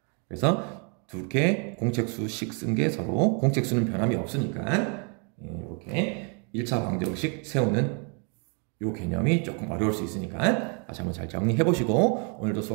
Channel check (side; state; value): left; quieter; 37.6 dB